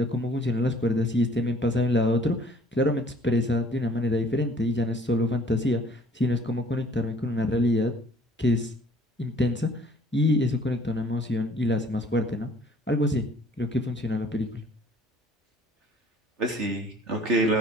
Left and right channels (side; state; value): both; normal; correlation 0.55